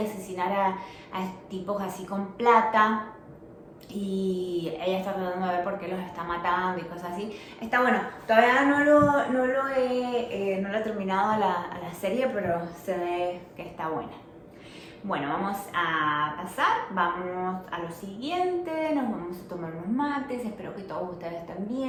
a tipos así con plata y ella está tratando de ver por qué los está matando y cosas así. Está bueno, todavía no lo he terminado a la serie, pero se ve que está buena. Bueno, vamos a pasar, vamos a lo siguiente, nos vamos a tomar unos mates, espero que todos ustedes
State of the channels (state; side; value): identical; both; correlation 1.00